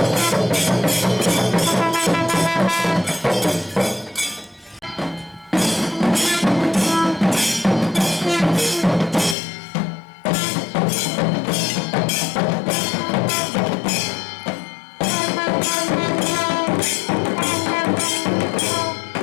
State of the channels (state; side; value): drops out; right; at 9.3 s